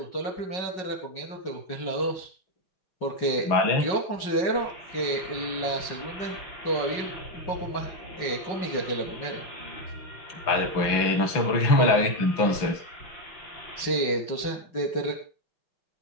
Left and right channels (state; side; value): late; right; 6.0 ms